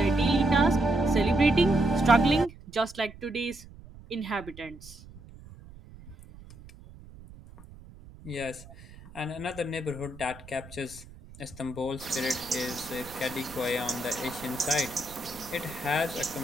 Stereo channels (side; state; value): right; noise; rumble, 19 dB below the sound